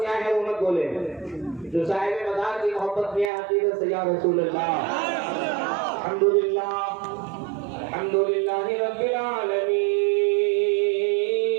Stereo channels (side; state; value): left; drops out; at 3.3 s